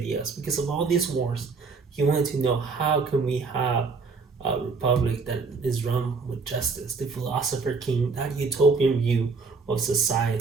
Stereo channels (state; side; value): quieter; left; 4.5 dB